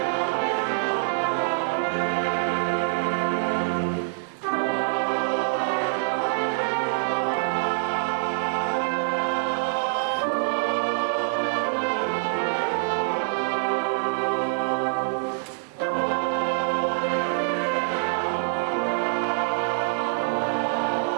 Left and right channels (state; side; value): silent; left; 61 dB below the other